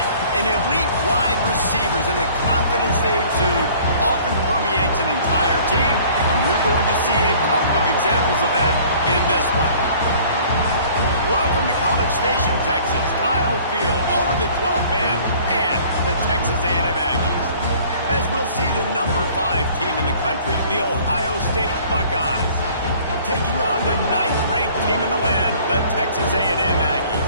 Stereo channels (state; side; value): inverted; both; correlation -0.52